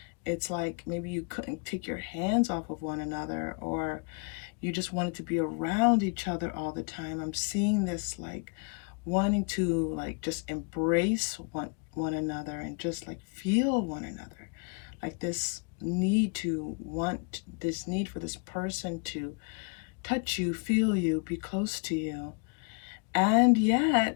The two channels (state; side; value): quieter; right; 35.3 dB